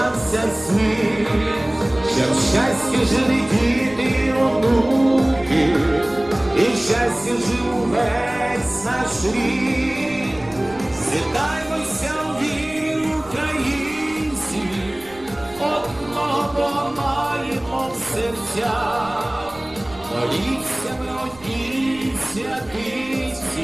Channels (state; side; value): noise; right; rumble, 23 dB below the sound